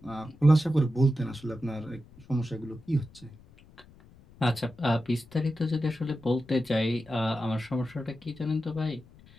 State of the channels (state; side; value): noise; left; rumble, 24 dB below the sound